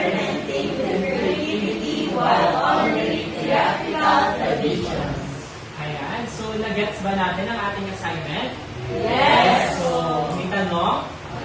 with creativity while honoring theatrical traditions. Ayan, so nag-gets ba natin ang ating assignment? Yes! So, may tanong?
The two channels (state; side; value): identical; both; correlation 1.00